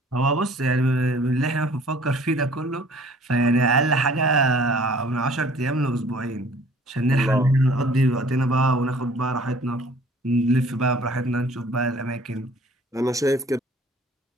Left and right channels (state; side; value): normal; both; correlation 0.53